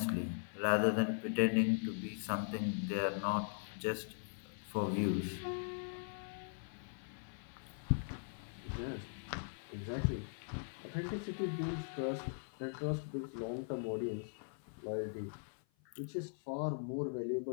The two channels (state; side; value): silent; right; 51 dB below the other